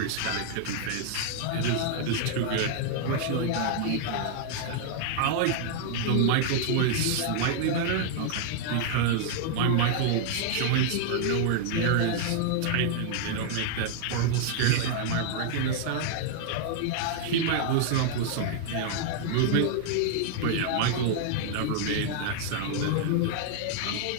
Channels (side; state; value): both; different; correlation -0.01